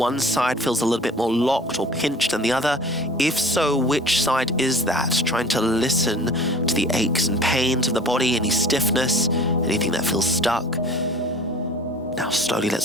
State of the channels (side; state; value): both; normal; correlation 0.44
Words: side feels a little bit more locked or pinched than the other. If so, which side is that? Trying to listen to the aches and pains of the body, any stiffness, anything that feels stuck. Now slowly